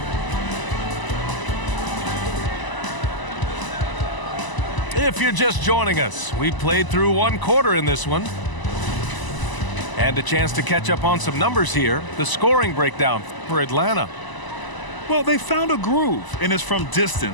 If you're just joining us, we played through 1 quarter in this one. And a chance to catch up on some numbers here. The scoring breakdown for Atlanta. Well, they found a groove, and it's from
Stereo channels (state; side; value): late; right; 1.0 ms